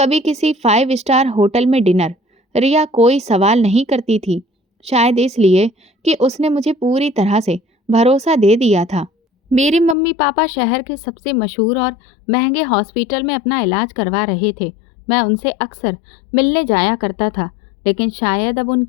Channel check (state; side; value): drops out; right; at 10.0 s